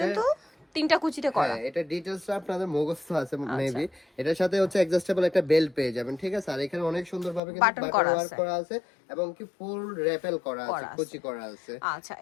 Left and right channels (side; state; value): right; drops out; at 7.4 s